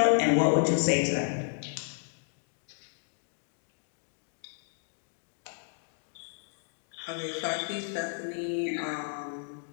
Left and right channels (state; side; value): silent; right; digital silence